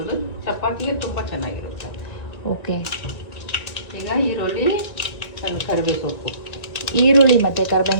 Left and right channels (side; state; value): right; late; 1.7 ms